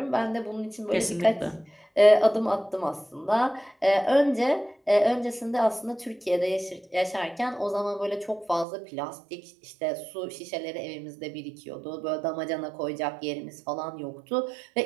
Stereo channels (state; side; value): drops out; left; at 8.7 s